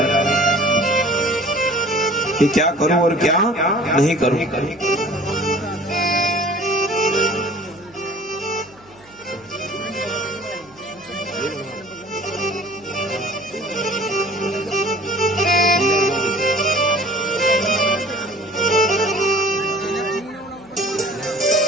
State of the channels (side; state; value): right; noise; hum, 27 dB below the sound